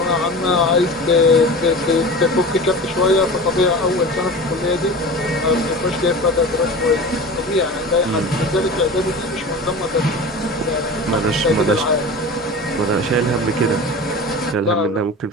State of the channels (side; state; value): both; normal; correlation 0.33